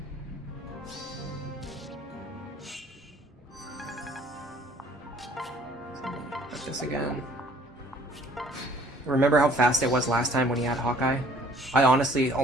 Put this again. Remember how fast it was last time when he had Hawkeye? I honestly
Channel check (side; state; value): both; normal; correlation 0.56